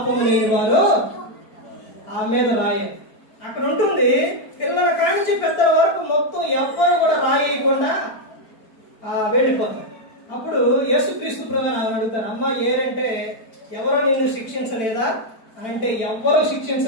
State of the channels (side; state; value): right; late; 4.4 ms